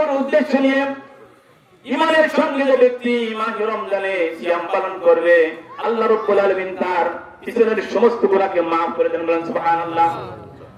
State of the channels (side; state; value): both; identical; correlation 1.00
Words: উদ্দেশ্য নিয়ে ঈমানের সঙ্গে যে ব্যক্তি মাহে রমজানে সিয়াম পালন করবে, আল্লাহ রাব্বুল আলামিন তার পিছনের সমস্ত গুনাহকে maaf করে দেন। বলেন সুবহানাল্লাহ।